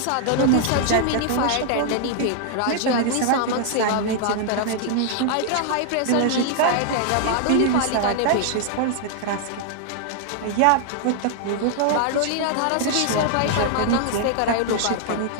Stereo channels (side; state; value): both; different; correlation 0.00